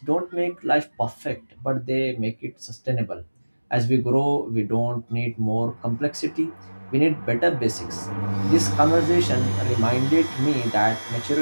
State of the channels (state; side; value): inverted; both; correlation -1.00